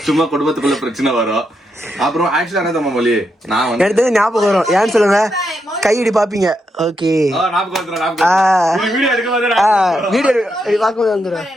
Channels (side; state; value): both; normal; correlation 0.82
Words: சும்மா குடும்பத்துக்குள்ள பிரச்சனை வரும். அப்புறம் ஆக்சுவலா என்ன தம்மா மொழி நான் வந்து எடுத்தது ஞாபகம் வரும். ஏன்னு சொல்லுங்க, கையடி பாப்பீங்க. ஓகே வீடியோ பார்க்கும்போது வந்துடும்.